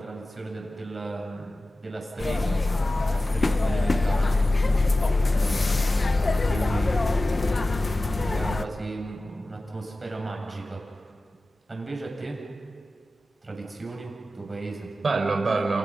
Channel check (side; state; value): both; normal; correlation 0.95